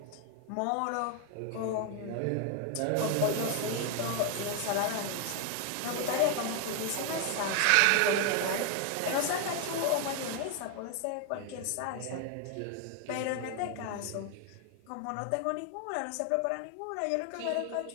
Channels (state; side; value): different; both; correlation 0.01